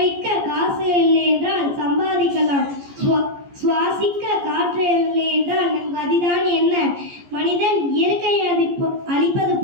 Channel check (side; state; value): left; late; 14 ms